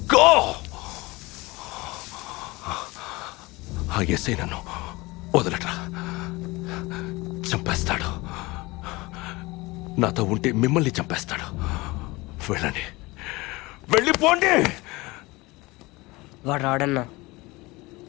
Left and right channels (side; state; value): right; quieter; 22.5 dB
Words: గో! ఆ ఎస్ఐ నన్ను వదలట్రా, చంపేస్తాడు. నాతో ఉంటే మిమ్మల్ని చంపేస్తాడు. వెళ్ళండి, వెళ్ళిపోండి. వాడు రాడన్నా,